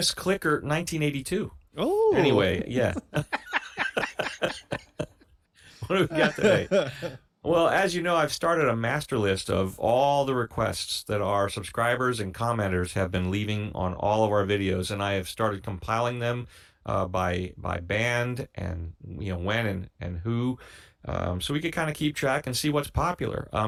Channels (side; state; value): both; identical; correlation 1.00